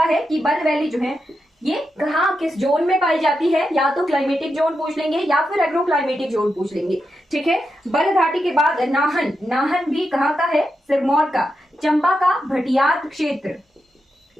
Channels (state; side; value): normal; both; correlation 0.87